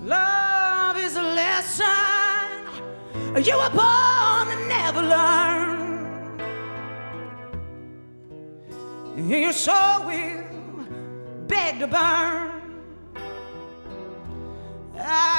Love is a lesson you were born to never learn. Your soul will beg to burn.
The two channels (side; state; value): both; inverted; correlation -1.00